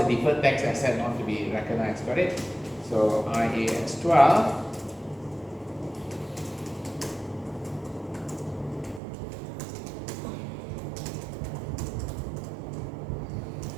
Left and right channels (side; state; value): left; drops out; at 9.0 s